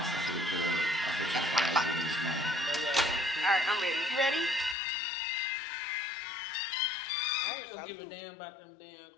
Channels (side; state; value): right; drops out; at 4.8 s